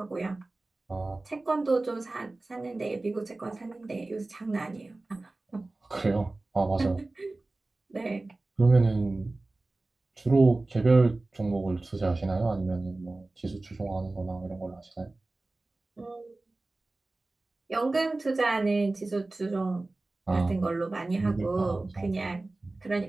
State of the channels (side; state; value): left; quieter; 3.1 dB